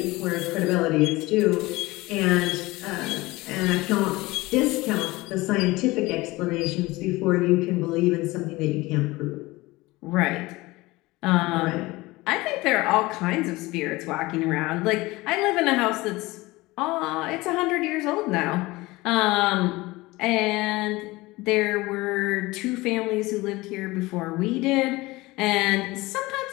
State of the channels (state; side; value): quieter; right; 20.8 dB